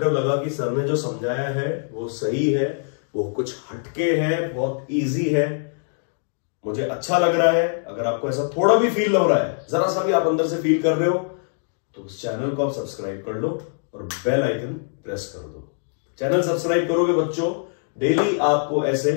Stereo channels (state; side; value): silent; right; digital silence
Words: लगा कि सर ने जो समझाया है वो सही है, वो कुछ हटके है, बहुत इजी है, मुझे अच्छा लग रहा है। अगर आपको ऐसा थोड़ा भी फील हो रहा है, जरा सा भी आप अंदर से फील कर रहे हो, तो उस चैनल को आप सब्सक्राइब कर लो और बेल आइकन प्रेस कर दो। चैनल सब्सक्राइब करोगे बच्चों, डेली आपको ऐसे,